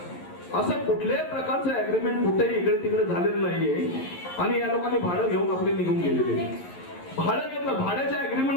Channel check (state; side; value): late; right; 11 ms